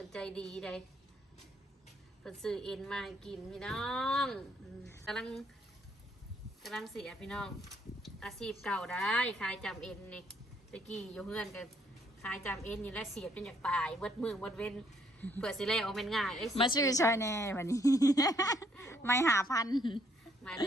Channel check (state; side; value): normal; both; correlation 0.68